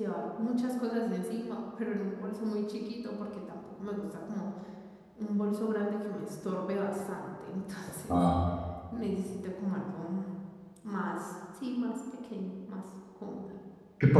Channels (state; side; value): identical; both; correlation 1.00